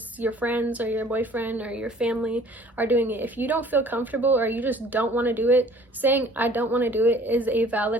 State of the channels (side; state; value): both; normal; correlation 0.52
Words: your friends or your boyfriend or your family are doing it. If you don't feel comfortable or you just don't want to do it, saying I don't want to do it is a